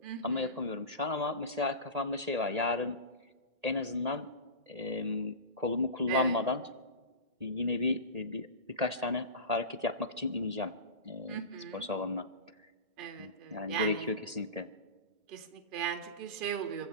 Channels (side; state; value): left; late; 1.8 ms